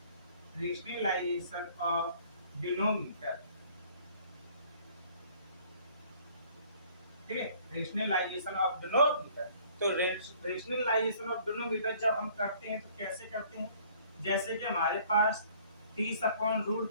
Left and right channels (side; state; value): both; inverted; correlation -0.56